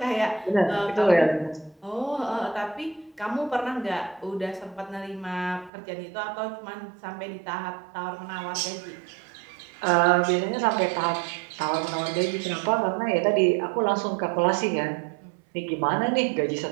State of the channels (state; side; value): drops out; left; at 5.7 s